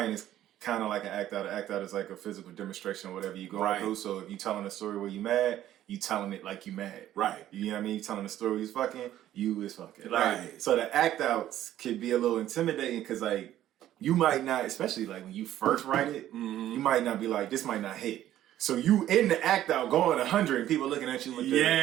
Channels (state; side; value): quieter; left; 12.6 dB